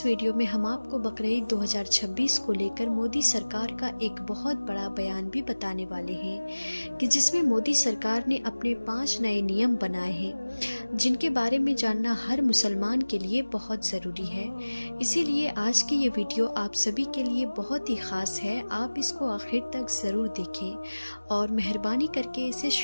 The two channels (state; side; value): inverted; both; correlation -1.00